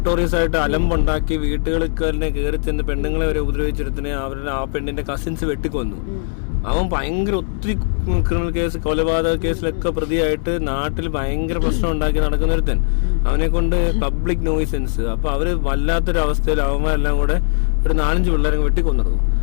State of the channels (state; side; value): silent; right; digital silence